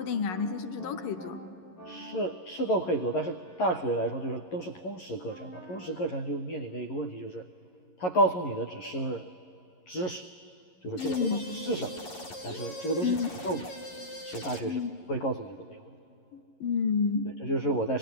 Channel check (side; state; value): right; late; 11 ms